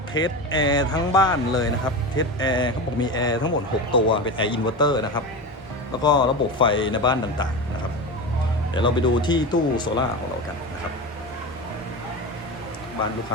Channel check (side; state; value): both; normal; correlation 0.24